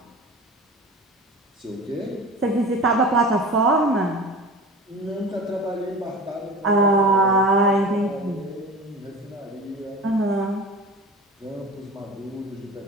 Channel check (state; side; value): normal; both; correlation 0.35